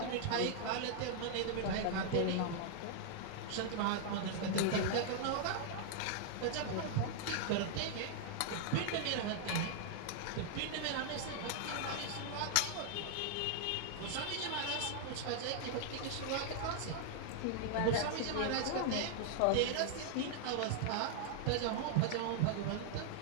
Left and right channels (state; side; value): different; both; correlation 0.00